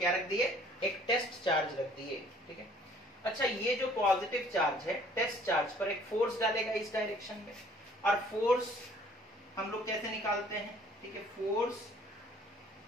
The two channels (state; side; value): normal; both; correlation 0.56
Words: रख दिए, एक टेस्ट चार्ज रख दिए, ठीक है। अच्छा, ये जो पॉजिटिव चार्ज है, टेस्ट चार्ज पर एक फोर्स डालेगा इस डायरेक्शन में, और फोर्स हम लोग कैसे निकालते हैं, ठीक है, force